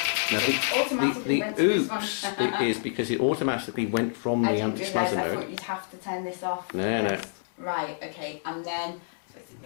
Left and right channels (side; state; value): right; silent; digital silence